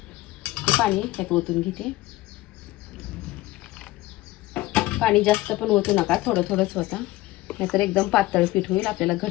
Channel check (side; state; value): right; quieter; 18.0 dB